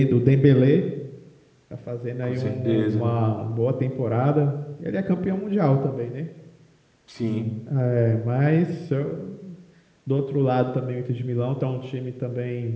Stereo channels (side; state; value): both; identical; correlation 1.00